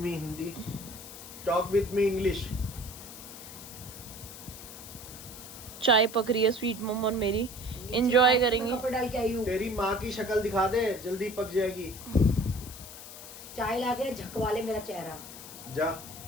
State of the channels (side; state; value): left; noise; hiss, 13 dB below the sound